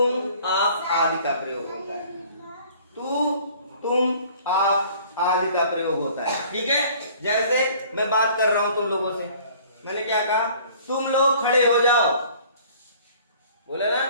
आप आदि का प्रयोग होता है। तू, तुम, आप आदि का प्रयोग होता है, ठीक है। जैसे मैं बात कर रहा हूं तुम लोगों से, मैंने क्या कहा, तुम लोग खड़े हो जाओ, बोले ना,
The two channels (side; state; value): both; inverted; correlation -0.52